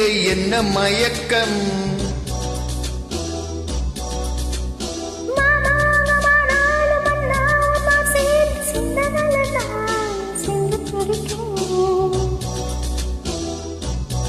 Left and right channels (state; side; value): identical; both; correlation 1.00